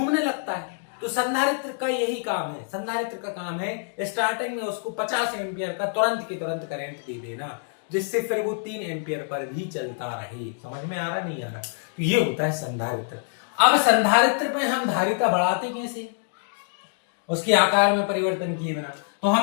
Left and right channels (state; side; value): silent; right; digital silence